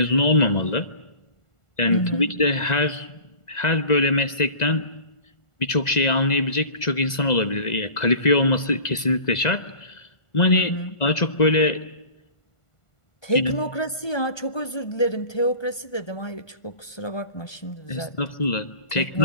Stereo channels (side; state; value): right; late; 2.0 ms